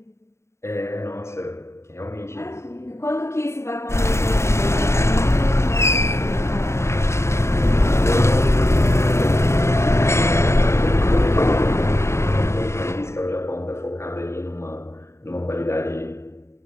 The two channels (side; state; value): right; late; 0.13 ms